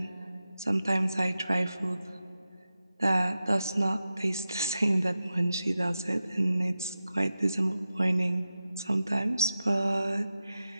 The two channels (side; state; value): both; inverted; correlation -0.91